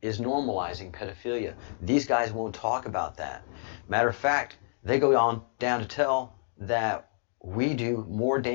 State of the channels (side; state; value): right; silent; digital silence